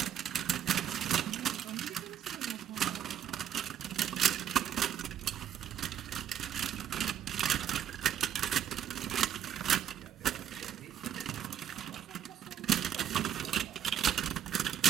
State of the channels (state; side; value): quieter; left; 9.8 dB